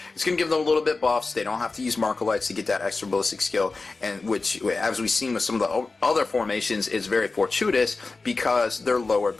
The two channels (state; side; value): quieter; right; 3.8 dB